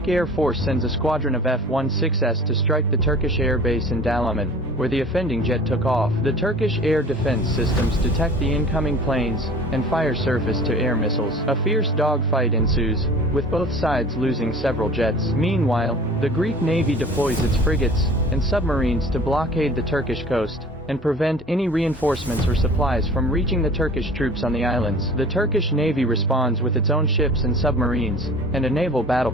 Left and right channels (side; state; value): both; normal; correlation 0.44